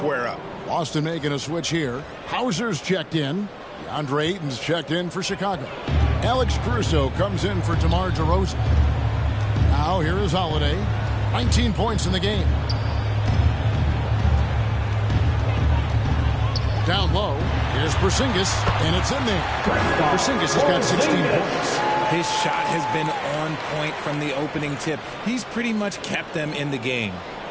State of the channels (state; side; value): identical; both; correlation 1.00